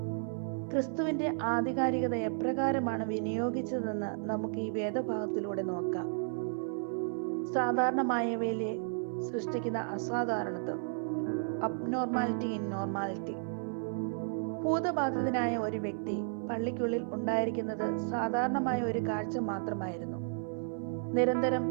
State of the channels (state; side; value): silent; left; 56 dB below the other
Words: ക്രിസ്തുവിന്റെ ആധികാരികത എപ്രകാരമാണ് വിനിയോഗിച്ചതെന്ന് നമുക്ക് ഈ വേദഭാഗത്തിലൂടെ നോക്കാം. സാധാരണമായവയിലെ സൃഷ്ടിക്കുന്ന അസാധാരണത്വം, അബ്നോർമാലിറ്റി ഇൻ നോർമാലിറ്റി. ഭൂതബാധിതനായ ഒരു വ്യക്തി പള്ളിക്കുള്ളിൽ ഉണ്ടായിരിക്കുന്നത് സാധാരണമായ ഒരു കാഴ്ച മാത്രമായിരുന്നു.